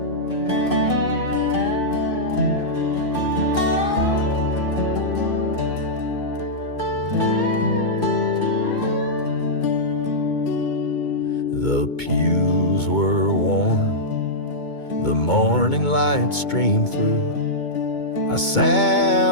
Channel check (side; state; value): right; late; 2.2 ms